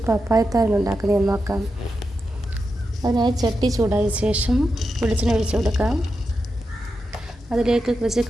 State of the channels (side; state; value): both; normal; correlation 0.88